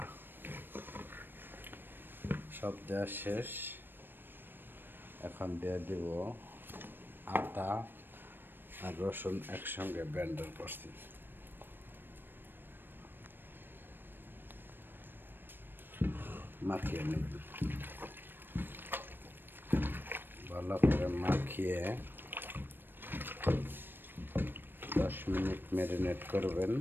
সব দেওয়া শেষ। এখন দিয়ে দিব আদা আর রসুন একসঙ্গে ব্লেন্ডার করছি। মাখিয়ে নেব, ভালো করে মাখিয়ে 10 মিনিট ম্যারিনেট করবেন।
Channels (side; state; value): left; late; 0.096 ms